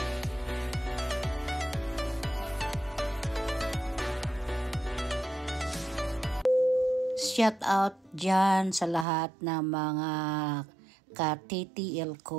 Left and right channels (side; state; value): left; drops out; at 9.1 s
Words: Shout out dyan sa lahat ng mga ka-TTL